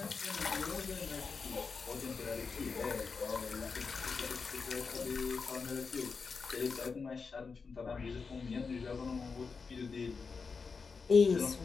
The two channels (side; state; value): right; quieter; 5.0 dB